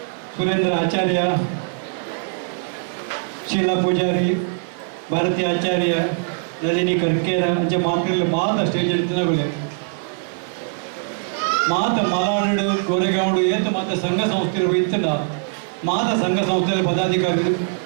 ಸುರೇಂದ್ರ ಆಚಾರ್ಯ, ಶೀಲಾ ಪೂಜಾರಿ, ಭಾರತಿ ಆಚಾರ್ಯ, ರಜನಿ ಕರ್ಕೇರ ಅಂಚೆ ಮಾತ್ರ ಮಾತ ಸ್ಟೇಜ್ ಇರ್ತನಗಳೇ ಮಾತ ಮಲಾಡು ಗೋರೆಗಾಂಡು ಏತ ಮಾತ ಸಂಘ ಸಂಸ್ಥೆಗಳು ಇತ್ತಲ್ಲ ಮಾತ ಸಂಘ ಸಂಸ್ಥೆಯ ಪದಾಧಿಕಾರಿಗಳು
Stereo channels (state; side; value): silent; left; 55 dB below the other